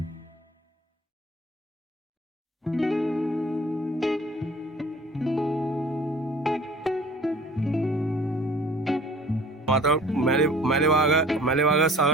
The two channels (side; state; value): both; normal; correlation 0.49